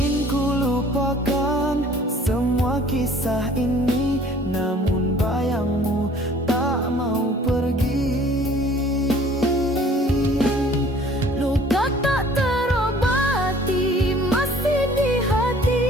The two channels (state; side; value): normal; both; correlation 0.53